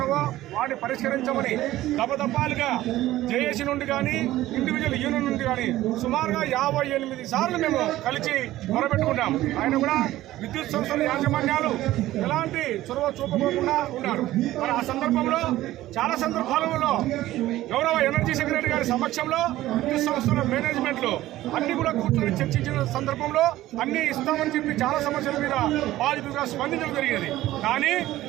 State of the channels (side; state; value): left; quieter; 15.4 dB